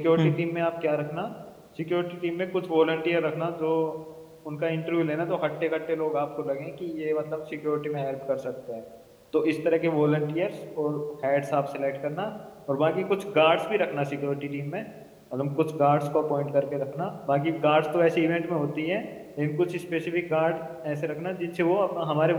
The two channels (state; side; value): identical; both; correlation 1.00